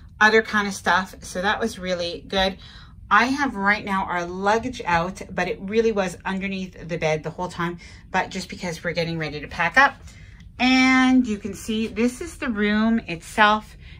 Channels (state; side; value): identical; both; correlation 1.00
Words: other kind of stuff. So that was really good. I have right now our luggage out, but it really was underneath the bed the whole time, but just because we're getting ready to pack up. And you can see this is the room itself.